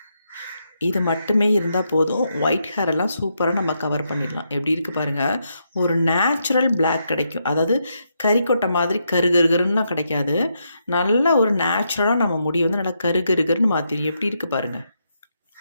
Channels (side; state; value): both; inverted; correlation -0.80